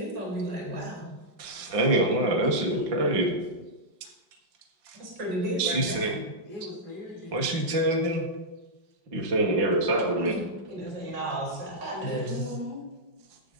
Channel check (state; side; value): late; left; 5.7 ms